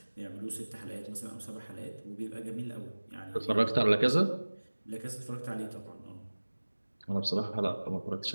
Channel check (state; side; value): inverted; both; correlation -1.00